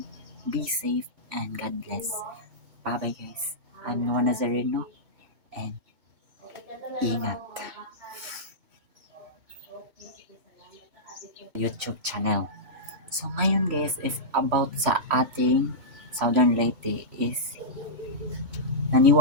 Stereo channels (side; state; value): left; late; 2.2 ms